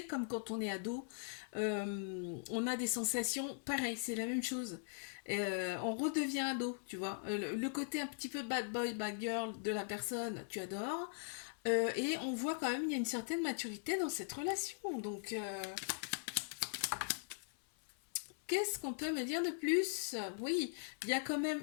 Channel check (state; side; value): silent; right; 51 dB below the other